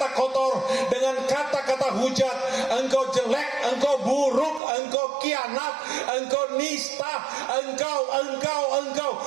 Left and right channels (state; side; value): drops out; left; at 4.6 s